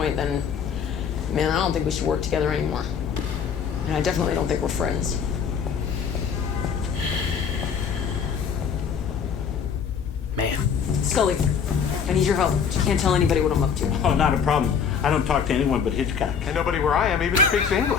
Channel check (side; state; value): right; quieter; 6.8 dB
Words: then, man, I don't think we should work together anymore. And I definitely don't think we're friends. Man. Scully, I need your help. You can't tell anybody what I'm up to. Oh, not a problem. I don't talk to anyone but Hitchcock. And nobody where I am even speaks